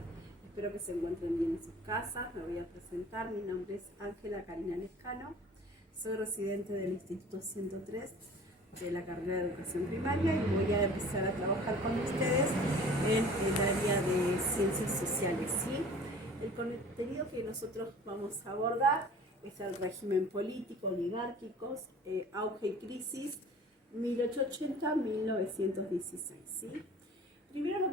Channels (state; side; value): normal; both; correlation 0.46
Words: Espero que se encuentren bien en sus casas. Me voy a presentar. Mi nombre es Ángela Karina Lescano. Soy residente del Instituto 103 de la carrera de Educación Primaria y voy a empezar a trabajar con ustedes en el área de Ciencias Sociales. ¿Sí? El contenido que nosotros vamos a abordar es el régimen político, oligárquico, auge y crisis, 1880-1916. ¿Sí? Primero lo